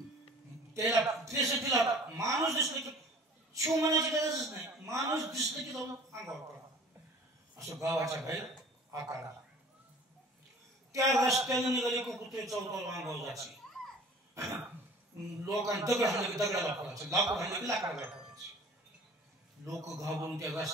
त्याला माणूस दिसलं की शिव म्हणायची गरजच नाही, माणूस दिसलं की जाऊन अंगावर पडा, असं गावाच्या बाहेर आकारा. त्या रस्त्याने निघाली की कुत्रे चौकावर अंगावर जायचे. लोकांना दगड हाणले की दगडाला पडायचं, लाकूड हाणले की लाकडाला पडायचे. लोक घाबरून त्या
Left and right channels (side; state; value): both; normal; correlation 0.47